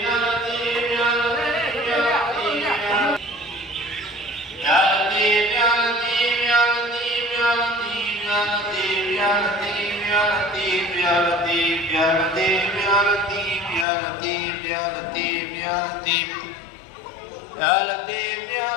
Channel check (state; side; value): drops out; right; at 13.9 s